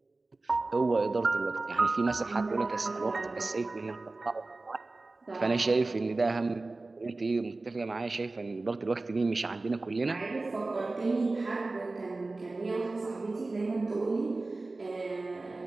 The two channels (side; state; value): left; quieter; 3.3 dB